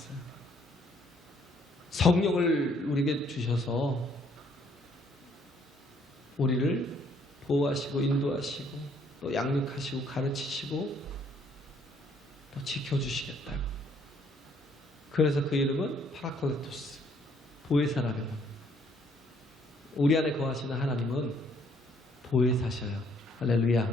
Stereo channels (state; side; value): normal; both; correlation 0.65